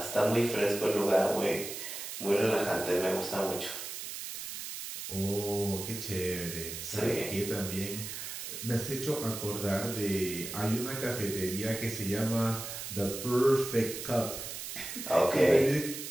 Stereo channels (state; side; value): noise; right; hiss, 7 dB below the sound